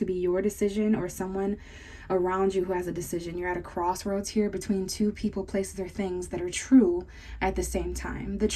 be your decision or someone around you who has a decision. You're at a crossroads here between two people, places, or things that are true at the same time. The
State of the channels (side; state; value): both; identical; correlation 1.00